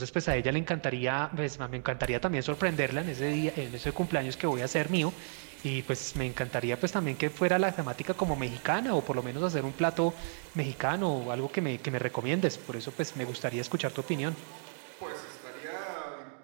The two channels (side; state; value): left; silent; digital silence